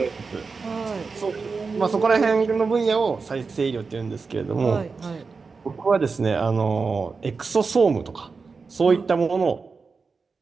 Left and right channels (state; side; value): quieter; left; 4.6 dB